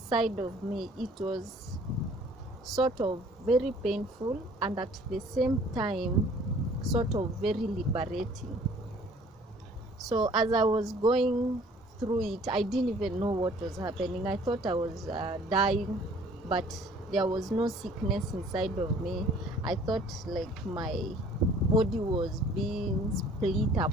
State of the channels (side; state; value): both; normal; correlation 0.54